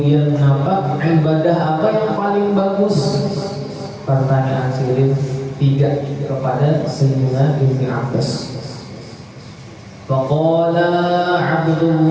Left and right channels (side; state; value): both; identical; correlation 1.00